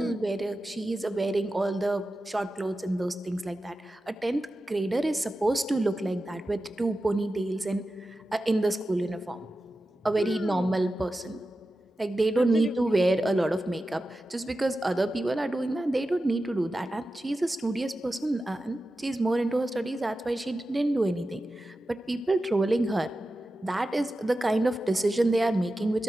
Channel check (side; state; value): both; normal; correlation 0.93